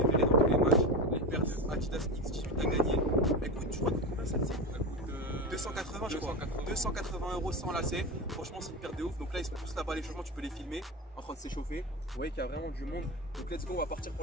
verrez dans tous les matchs. Les paires de Adidas X18 à gagner. Écoute, tu crois que combien ça dit? 280 je crois. 280 € sans lacets. Franchement c'est une paire de ouf. Donc là ils sont tous là-bas à l'échauffement, tu peux les filmer en train de s'échauffer. Vous voyez qu'il y a vraiment du monde. Donc let's go, on va partir pour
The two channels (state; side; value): normal; both; correlation 0.22